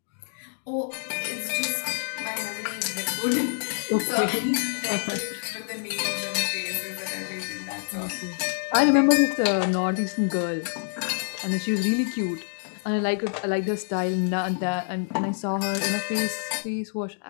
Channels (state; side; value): silent; right; digital silence